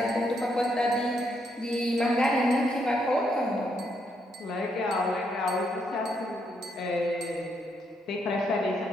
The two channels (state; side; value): normal; both; correlation 0.76